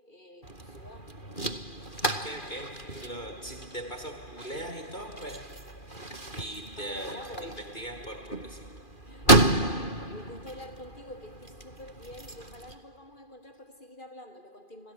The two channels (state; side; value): late; right; 2.4 ms